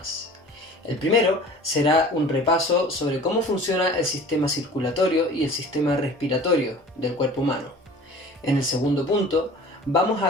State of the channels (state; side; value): normal; both; correlation 0.43